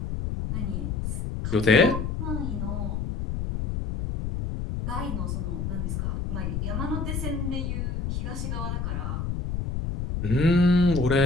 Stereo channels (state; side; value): noise; left; rumble, 2 dB below the sound